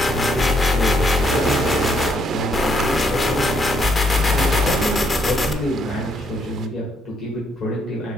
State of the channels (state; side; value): normal; both; correlation 0.72